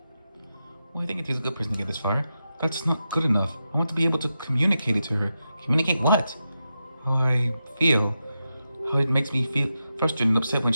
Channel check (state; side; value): inverted; both; correlation -0.89